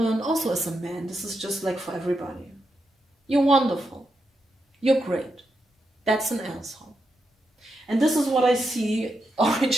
also as a man. This is just like for everybody. You're wonderful. You're great. That's an asshole. And this is what I see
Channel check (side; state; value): both; normal; correlation 0.84